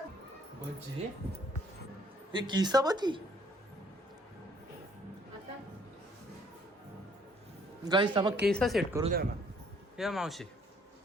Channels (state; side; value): normal; both; correlation 0.62